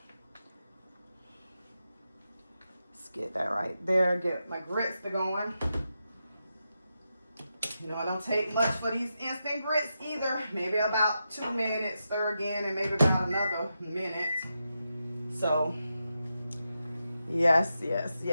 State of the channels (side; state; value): both; inverted; correlation -0.88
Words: Let's get that right there. Get my grits to going. You know, it don't take much for these instant grits either. Maybe about 2 minutes, stir again, and maybe about another minute. So, yes, yes,